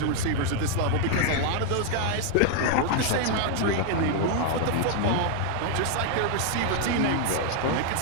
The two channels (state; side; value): different; both; correlation 0.00